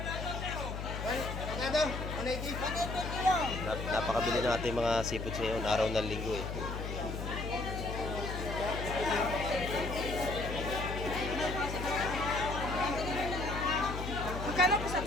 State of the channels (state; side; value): noise; left; hum, 5 dB below the sound